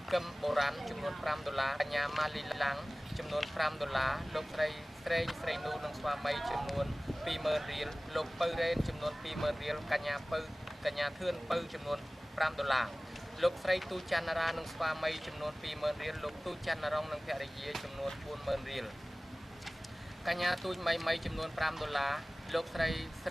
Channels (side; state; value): both; normal; correlation 0.98